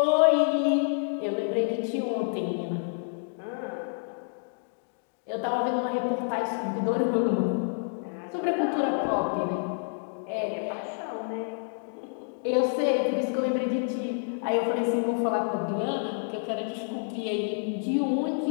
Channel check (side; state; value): right; silent; digital silence